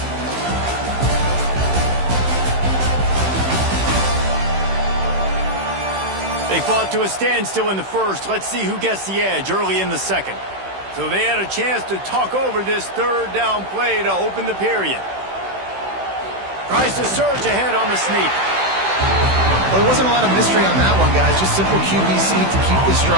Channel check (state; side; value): late; left; 16 ms